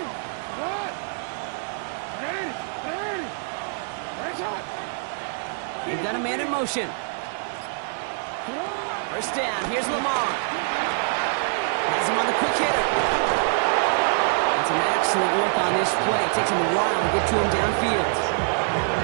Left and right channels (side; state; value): left; silent; digital silence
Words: You've got a man in motion. 1st down, here's Lamar. Has him on the quick hitter. And some excellent work on this play. It takes him a while to get to him downfield.